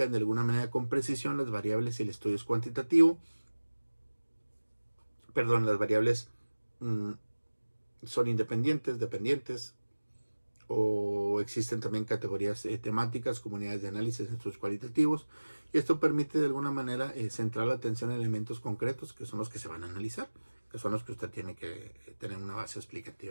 de alguna manera con precisión las variables y el estudio es cuantitativo. Perdón, las variables son independientes, dependientes, o existen también categorías temáticas, comunidades de análisis, estudios cualitativos, y esto permite de alguna manera centrar la atención en elementos concretos que son los que se van a analizar, que son los que usted tiene que tener una base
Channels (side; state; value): both; inverted; correlation -1.00